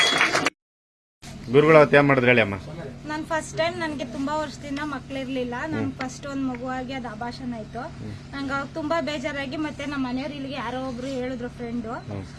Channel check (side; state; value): both; identical; correlation 1.00